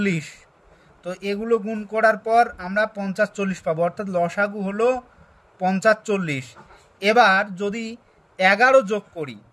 তো এগুলো গুণ করার পর আমরা 50, 40 পাবো, অর্থাৎ লসাগু হলো 50, 40। এবার যদি 11 যোগ করি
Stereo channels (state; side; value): identical; both; correlation 1.00